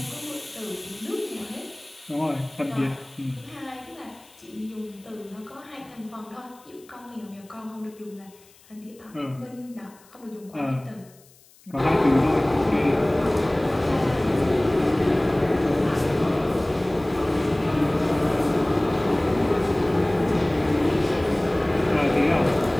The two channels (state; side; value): noise; left; hiss, 27 dB below the sound